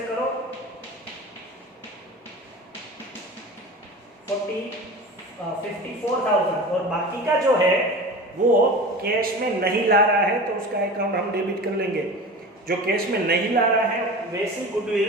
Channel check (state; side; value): normal; both; correlation 0.33